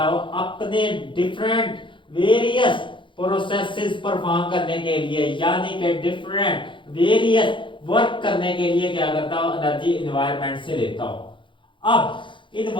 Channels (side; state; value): right; late; 0.24 ms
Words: हो अपने डिफरेंट वेरियस प्रोसेसेस परफॉर्म करने के लिए, यानी कि डिफरेंट वेरियस वर्क करने के लिए क्या करता हो, एनर्जी एनवायरनमेंट से लेता हो। अब